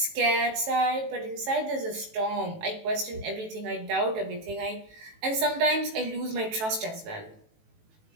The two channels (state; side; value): late; left; 18 ms